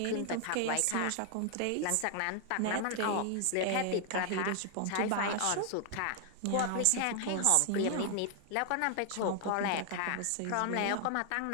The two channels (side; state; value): both; different; correlation 0.00